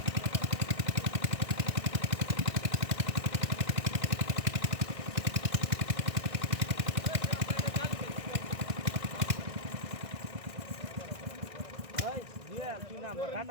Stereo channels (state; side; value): late; left; 1.6 ms